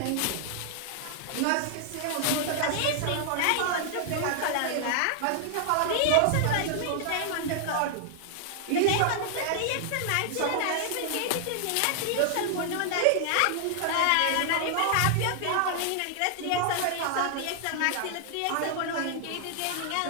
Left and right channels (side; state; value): both; different; correlation 0.00